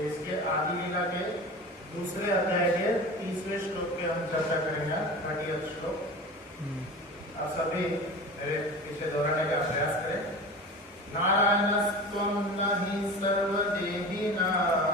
इसके आदि लीला के दूसरे अध्याय के 30वें श्लोक के हम चर्चा करेंगे, 30th श्लोक। आप सभी मेरे पीछे दोहराने का प्रयास करें। नारायणस्त्वं न हि सर्वदेहिना।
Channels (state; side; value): normal; both; correlation 0.33